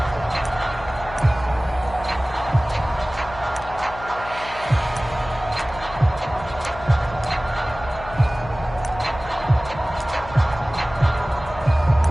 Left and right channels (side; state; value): left; noise; hum, 14 dB below the sound